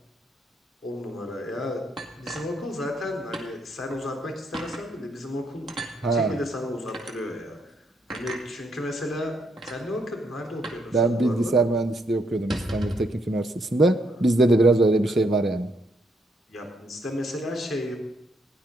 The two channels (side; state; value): both; normal; correlation 0.75